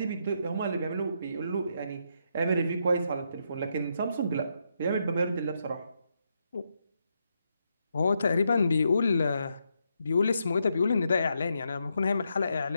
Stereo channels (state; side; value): inverted; both; correlation -0.81